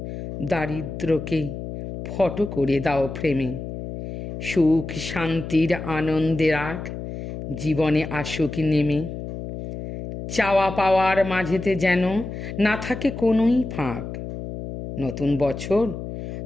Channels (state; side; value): noise; left; hum, 8 dB below the sound